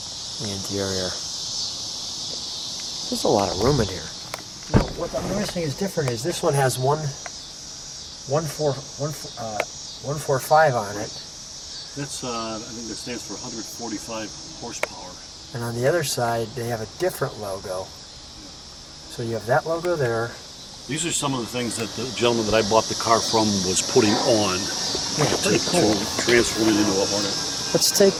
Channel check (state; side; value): identical; both; correlation 1.00